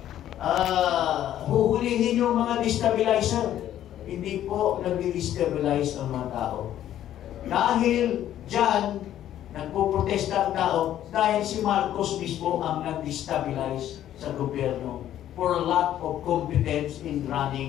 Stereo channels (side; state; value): right; quieter; 11.8 dB